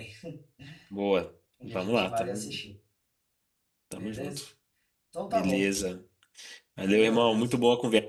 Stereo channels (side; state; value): both; identical; correlation 1.00